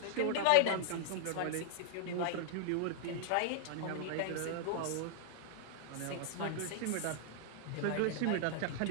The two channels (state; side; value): different; both; correlation -0.01